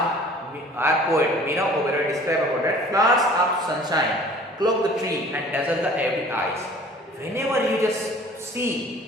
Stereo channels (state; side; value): normal; both; correlation 0.49